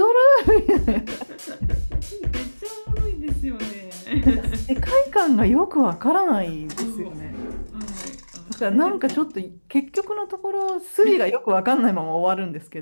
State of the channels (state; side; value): inverted; both; correlation -1.00